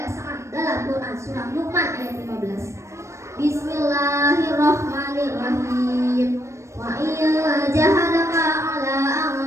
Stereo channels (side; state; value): left; late; 0.14 ms